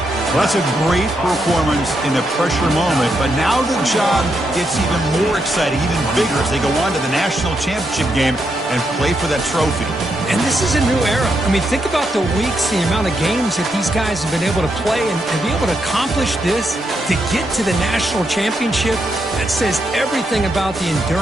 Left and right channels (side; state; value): both; normal; correlation 0.81